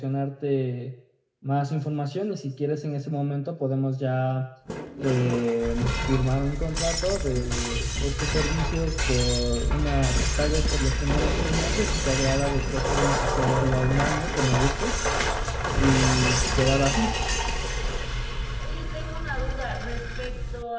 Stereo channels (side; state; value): both; identical; correlation 1.00